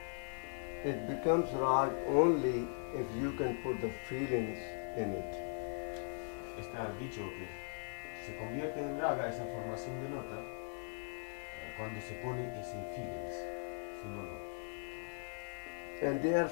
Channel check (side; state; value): right; silent; 51 dB below the other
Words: it becomes rag only if you can put the feelings in it. Está dicho que se convierte en raga esa formación de nota cuando se pone ese feelings. Si no, no. And there are